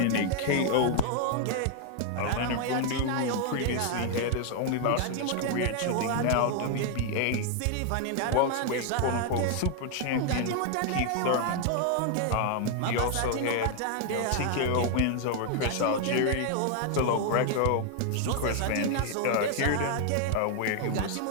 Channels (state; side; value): different; both; correlation 0.00